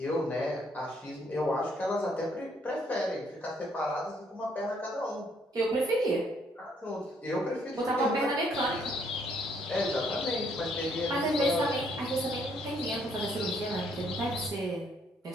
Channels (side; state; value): both; normal; correlation 0.68